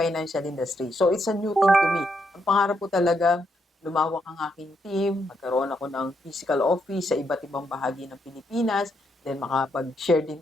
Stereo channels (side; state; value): both; normal; correlation 0.78